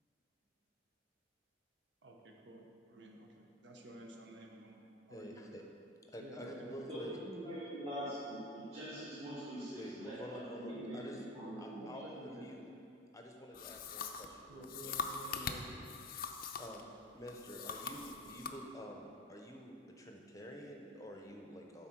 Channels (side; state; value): both; normal; correlation 0.28